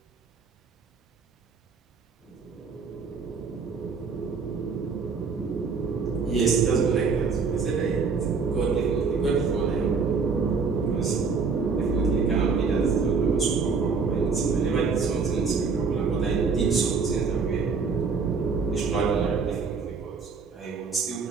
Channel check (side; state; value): left; quieter; 5.1 dB